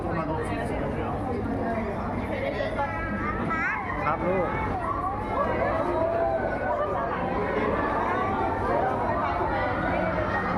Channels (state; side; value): identical; both; correlation 1.00